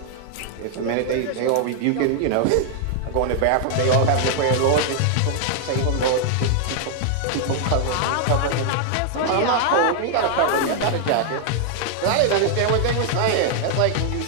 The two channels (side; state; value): both; different; correlation 0.00